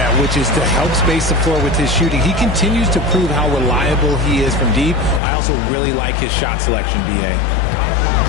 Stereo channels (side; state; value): right; drops out; at 5.2 s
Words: which is to help space the floor with his shooting. He continues to prove how reliable he is from deep. I also really like his shot selection, B.A.